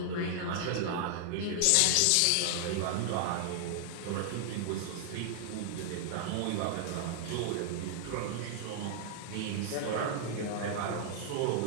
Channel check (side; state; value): both; different; correlation -0.01